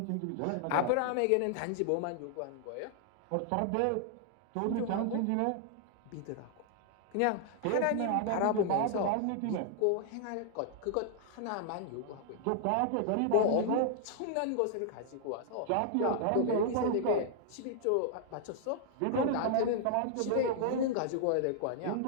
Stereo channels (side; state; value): both; different; correlation -0.01